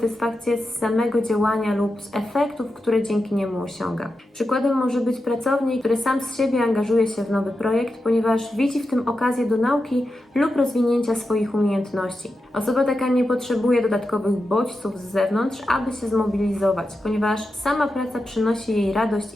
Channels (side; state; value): both; normal; correlation 0.89